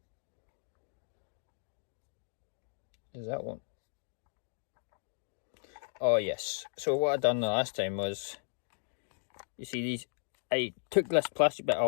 Is that one? Oh yes, so what I done the last time was, you see these, I took this plastic bit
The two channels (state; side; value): silent; right; digital silence